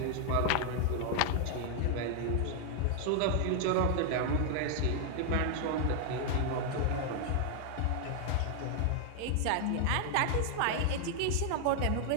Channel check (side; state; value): both; different; correlation 0.00